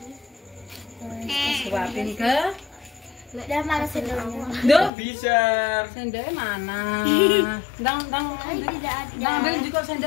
Suapin ke. Udah mana sendoknya? Duh, Bisa. sendoknya mana? Dang Tidak ada. ambil juga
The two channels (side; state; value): right; drops out; at 4.9 s